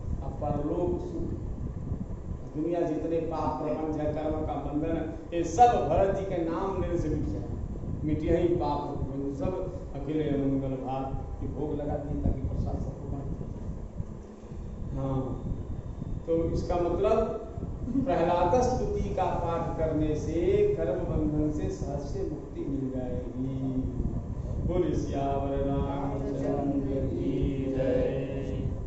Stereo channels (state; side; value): identical; both; correlation 1.00